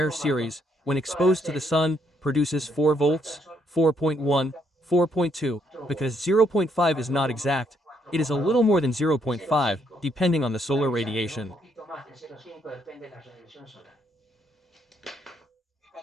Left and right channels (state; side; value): normal; both; correlation 0.72